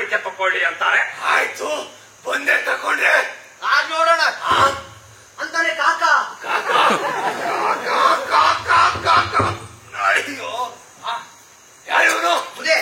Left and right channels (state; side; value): identical; both; correlation 1.00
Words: ತಕೊಳ್ಳಿ ಅಂತಾರೆ. ಆಯ್ತು ಬಂದೆ ತಕೊಂಡ್ರೆ ಆಗ ನೋಡೋಣ ಅಂತಾನೆ ಕಾಕ. ಅಯ್ಯೋ ಯಾರು ಬುದ್ಧಿ